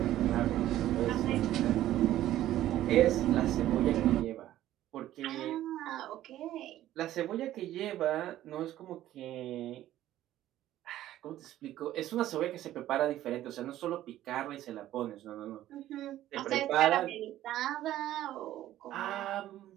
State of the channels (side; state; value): left; quieter; 13.5 dB